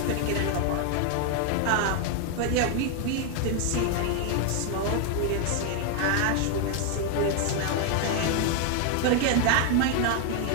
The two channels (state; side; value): different; both; correlation 0.01